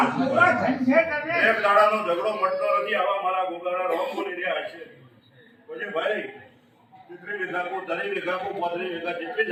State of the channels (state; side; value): identical; both; correlation 1.00